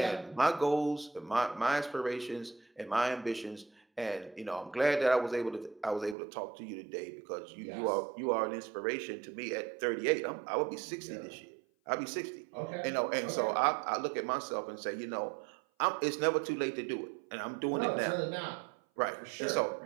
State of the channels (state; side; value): drops out; left; at 6.2 s